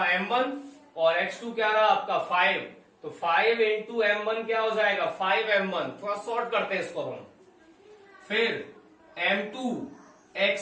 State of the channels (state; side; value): identical; both; correlation 1.00